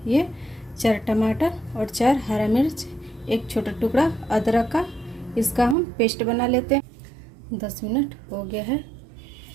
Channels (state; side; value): drops out; left; at 5.8 s